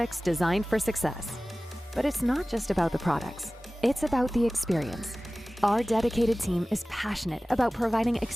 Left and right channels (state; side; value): normal; both; correlation 0.97